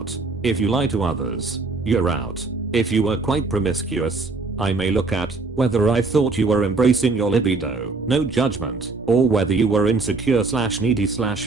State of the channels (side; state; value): left; quieter; 3.8 dB